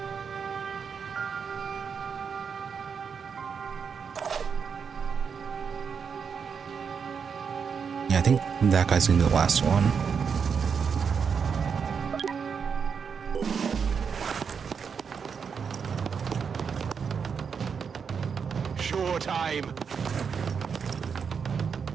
Yeah, I think that guy's gonna be the last one. Sure time.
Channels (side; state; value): left; quieter; 6.4 dB